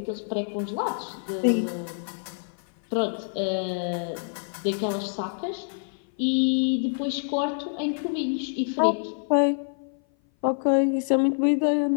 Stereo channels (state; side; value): silent; right; 57 dB below the other